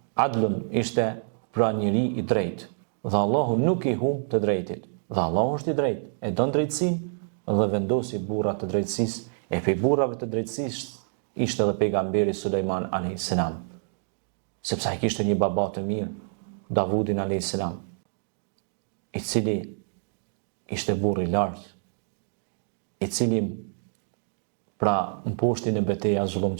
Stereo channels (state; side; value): silent; left; digital silence